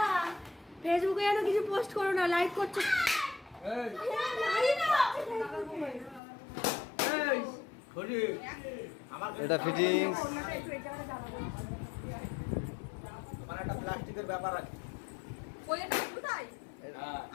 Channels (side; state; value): right; drops out; at 6.2 s